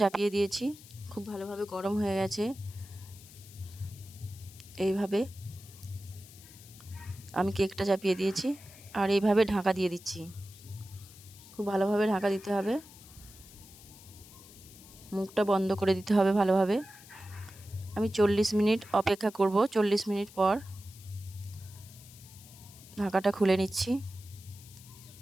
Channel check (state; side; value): noise; left; hiss, 20 dB below the sound